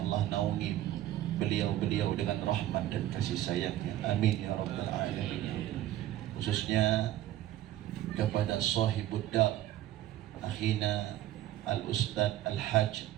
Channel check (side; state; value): left; quieter; 13.5 dB